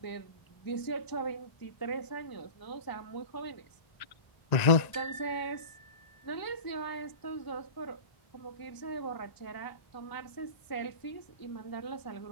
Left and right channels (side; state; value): right; late; 1.0 ms